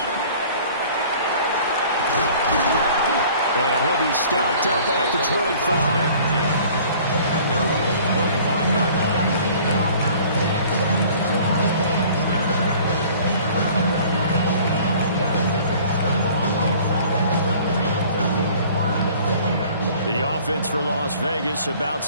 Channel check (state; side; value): inverted; both; correlation -0.50